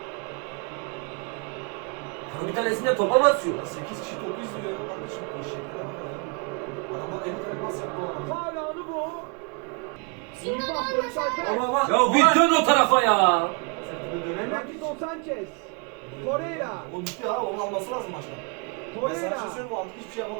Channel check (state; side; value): quieter; left; 34.4 dB